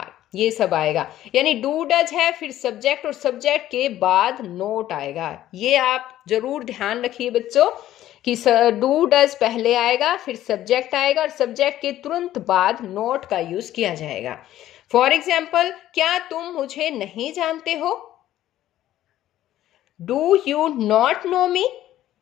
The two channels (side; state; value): right; quieter; 13.3 dB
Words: ये सब आएगा। यानी डू डज है, फिर सब्जेक्ट और सब्जेक्ट के बाद नोट आएगा। ये आप जरूर ध्यान रखिए बच्चों कि डू डज पहले आएगा, फिर सब्जेक्ट आएगा और सब्जेक्ट के तुरंत बाद नोट का यूज किया जाएगा। फॉर एग्जाम्पल, क्या तुम मुझे नहीं जानते हो, do you not know me,